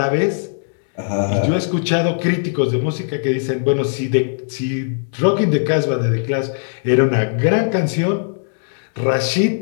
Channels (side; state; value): right; silent; digital silence